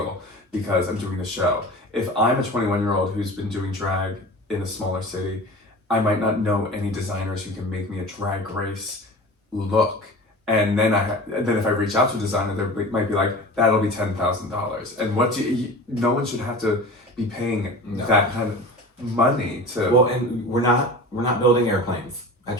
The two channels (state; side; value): normal; both; correlation 0.36